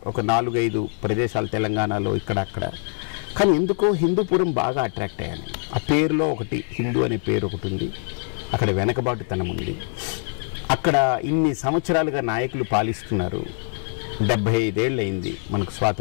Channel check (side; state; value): right; silent; 63 dB below the other